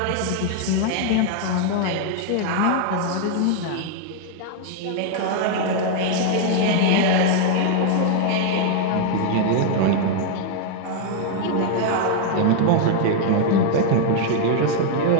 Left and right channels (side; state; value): both; different; correlation 0.00